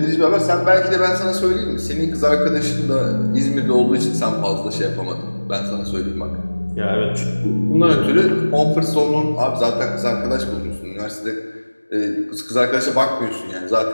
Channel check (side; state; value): both; inverted; correlation -1.00